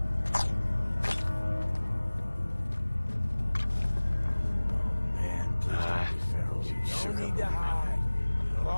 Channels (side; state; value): both; inverted; correlation -1.00